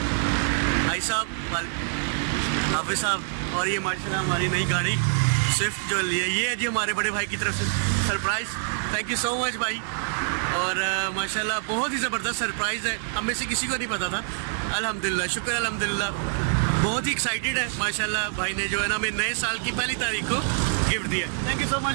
भाई साहब हाफिज़ साहब, और ये माशाल्लाह हमारी नई गाड़ी स्विफ्ट जो ली है, ये है जी हमारे बड़े भाई की तरफ से surprise. Thank you so much भाई, और माशाल्लाह बहुत ही ज़बरदस्त सरप्राइज़ है, हम में से किसी को नहीं पता था। अल्हम्दुलिल्लाह, शुक्र अल्हम्दुलिल्लाह, बहुत ही एक्साइटेड है माशाल्लाह। भाई ने जो है ना हमें नए साल की पहली तारीख को गिफ्ट दिया। Thank you so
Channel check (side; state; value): left; silent; 61 dB below the other